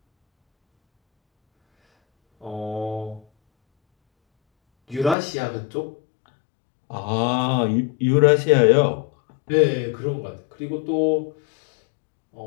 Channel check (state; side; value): drops out; right; at 5.2 s